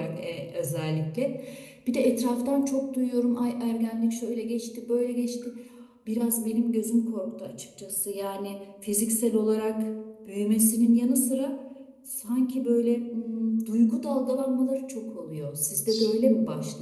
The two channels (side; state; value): both; identical; correlation 1.00